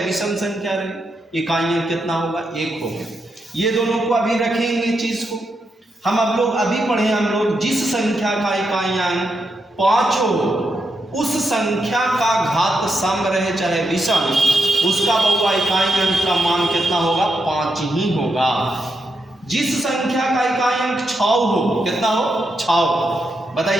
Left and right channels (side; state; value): both; normal; correlation 0.83